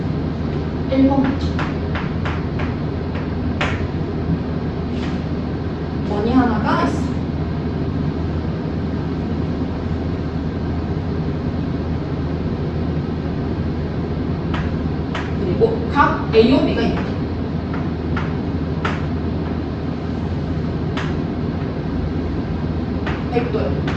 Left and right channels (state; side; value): identical; both; correlation 1.00